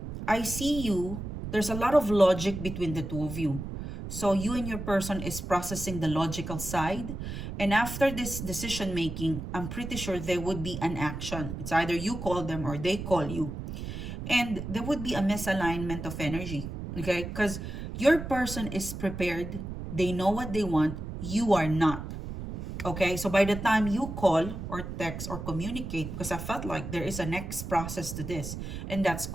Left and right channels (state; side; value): noise; right; rumble, 7 dB below the sound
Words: I see you, there's a lot of logic between the two of you. So you and your person is processing the logical side. And after this decision making, I'm pretty sure there would be an action. It's either you call them or they call you. And there would be a misalignment of energy. Okay? Because your person is prepared. They know what they want. You are not. Okay? So by the time you call or text or communicate, because I felt like there is a next process to this, and that's